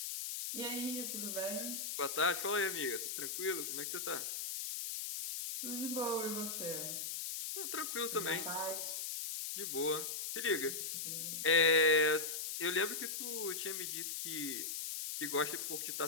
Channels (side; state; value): left; noise; hiss, 3 dB below the sound